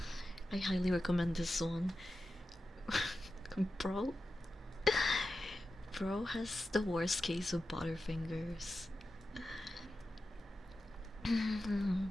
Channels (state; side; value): normal; both; correlation 0.92